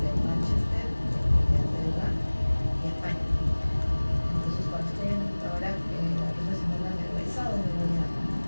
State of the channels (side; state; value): both; inverted; correlation -1.00